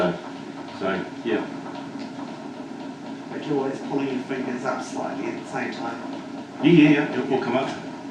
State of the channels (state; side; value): identical; both; correlation 1.00